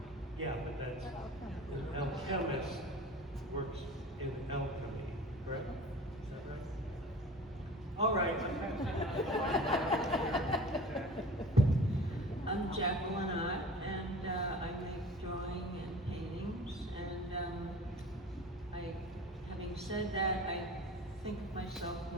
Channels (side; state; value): both; normal; correlation 0.40